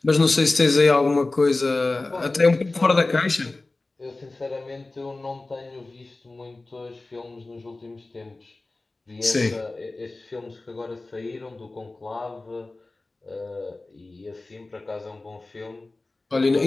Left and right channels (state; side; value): quieter; right; 3.2 dB